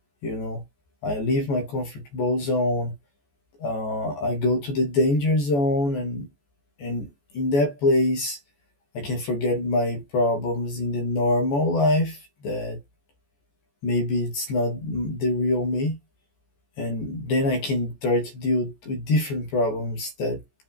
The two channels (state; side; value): late; right; 14 ms